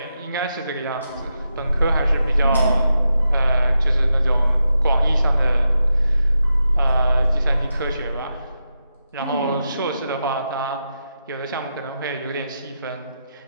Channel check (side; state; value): both; inverted; correlation -0.86